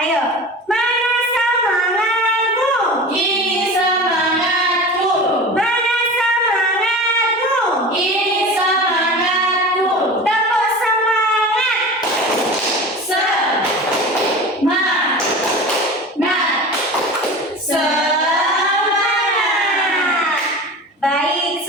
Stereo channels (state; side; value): normal; both; correlation 0.34